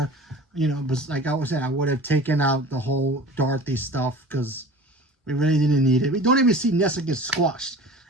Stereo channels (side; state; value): both; normal; correlation 0.40